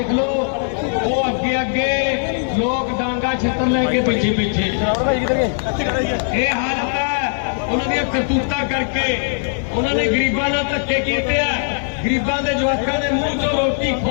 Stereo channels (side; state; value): right; silent; digital silence